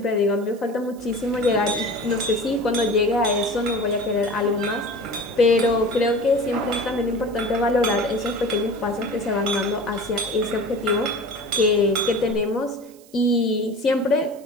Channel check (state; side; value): noise; right; hiss, 26 dB below the sound